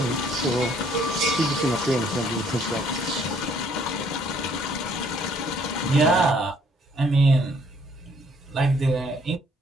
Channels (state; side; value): normal; both; correlation 0.63